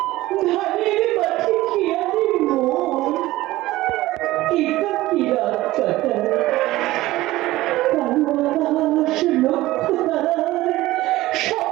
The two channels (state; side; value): quieter; left; 17.3 dB